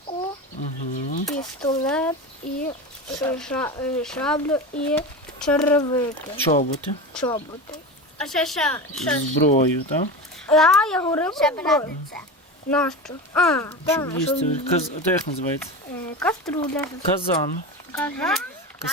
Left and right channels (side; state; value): both; normal; correlation 0.25